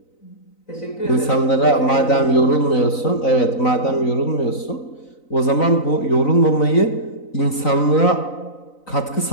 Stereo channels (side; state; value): right; late; 3.9 ms